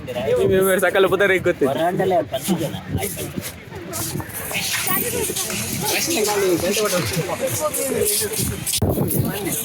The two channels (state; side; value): identical; both; correlation 1.00